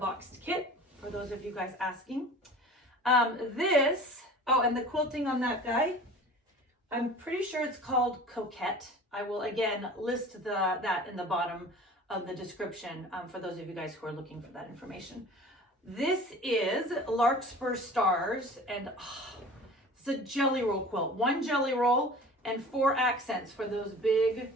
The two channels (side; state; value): both; normal; correlation 0.42